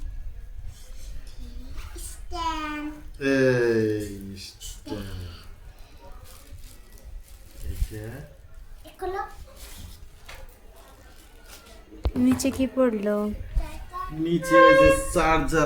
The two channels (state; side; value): identical; both; correlation 1.00